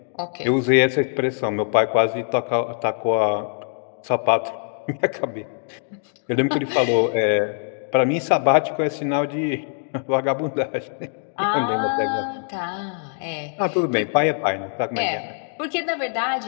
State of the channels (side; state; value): right; silent; 64 dB below the other